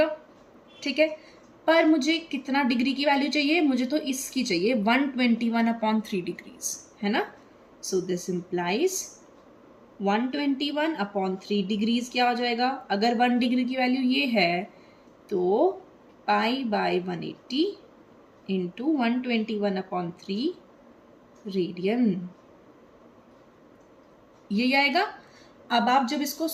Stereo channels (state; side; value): identical; both; correlation 1.00